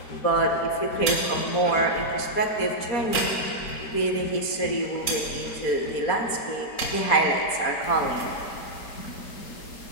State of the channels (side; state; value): right; late; 4.3 ms